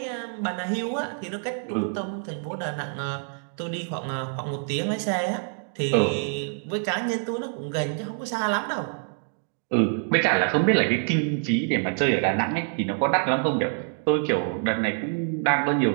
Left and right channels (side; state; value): left; silent; 55 dB below the other